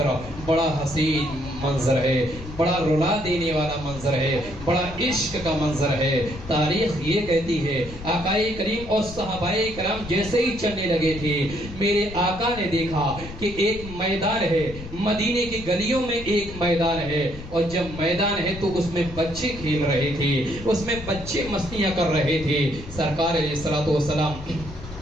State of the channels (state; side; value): noise; left; rumble, 13 dB below the sound